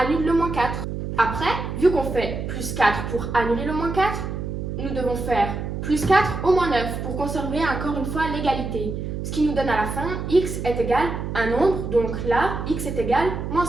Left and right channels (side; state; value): right; noise; hum, 5 dB below the sound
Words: le moins 4. Après, vu qu'on fait plus 4 pour annuler le moins 4, nous devons faire plus 4 au moins 9 pour conserver encore une fois l'égalité. Ce qui nous donne à la fin x est égal à un nombre, donc là, x est égal à moins